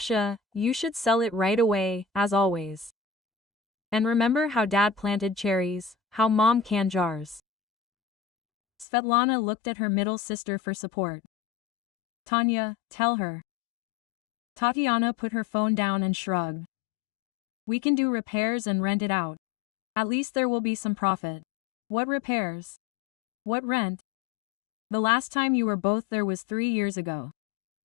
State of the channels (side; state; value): right; drops out; at 8.8 s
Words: you should sell it right away, as always. And remember how Dad planted cherries, how Mom canned jars. Svetlana looked at her middle sister for support. Tanya, tell her. Tatiana put her phone down and shrugged. We can do repairs and rent it out. At least there will be some profit. What repairs? What rent? The last time you were both there was 3 years ago.